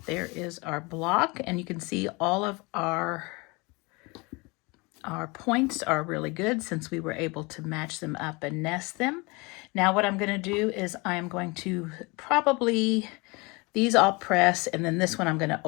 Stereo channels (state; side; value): quieter; right; 26.6 dB